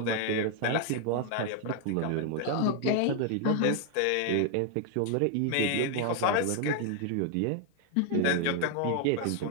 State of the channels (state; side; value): different; both; correlation 0.00